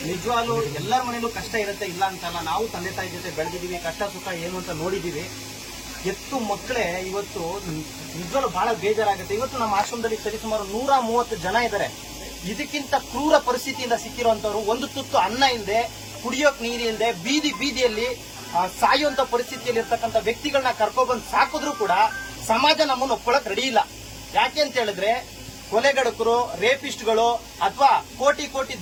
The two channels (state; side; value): identical; both; correlation 1.00